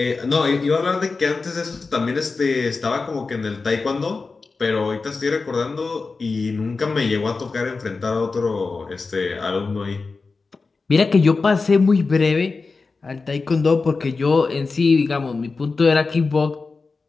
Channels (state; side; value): quieter; right; 4.2 dB